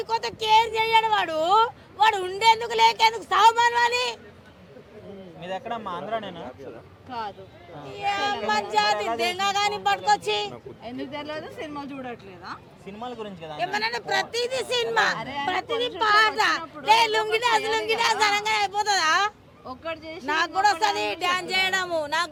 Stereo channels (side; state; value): both; identical; correlation 1.00